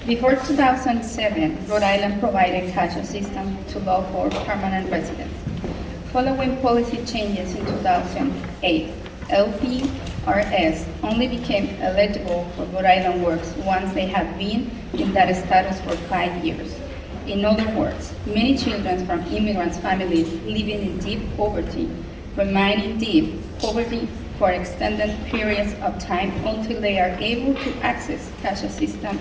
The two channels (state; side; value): identical; both; correlation 1.00